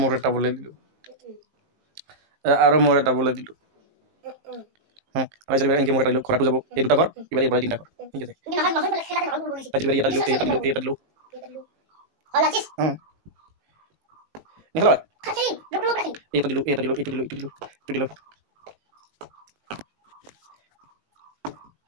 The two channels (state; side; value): late; left; 19 ms